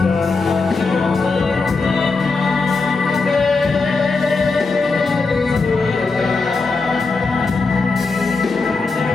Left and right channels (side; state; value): right; quieter; 4.1 dB